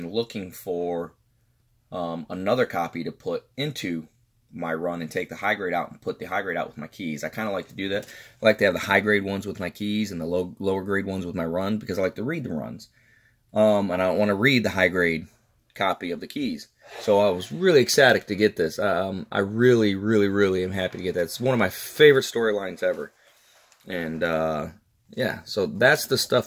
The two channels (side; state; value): both; identical; correlation 1.00